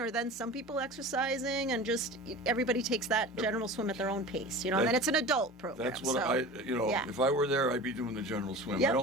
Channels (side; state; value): both; normal; correlation 0.35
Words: then some people exercising, and just everybody takes that general swim at their own pace, and then it's an adult program. That's what so, yeah. if I were there, I'd be doing the general swim. Yep. I